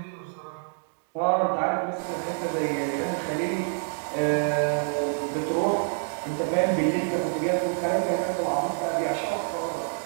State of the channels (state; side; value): silent; left; 60 dB below the other